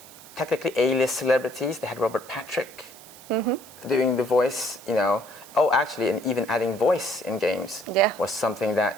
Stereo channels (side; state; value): right; noise; hiss, 20 dB below the sound